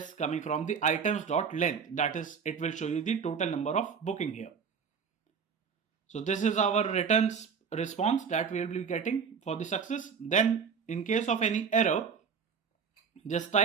coming from the items.length, that is it will show you the total number of booking here. So this is our returns response that we will be getting for the success. Then in case of any error, just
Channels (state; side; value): quieter; left; 6.3 dB